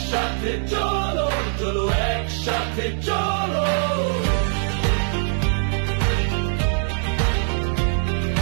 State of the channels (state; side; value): silent; left; digital silence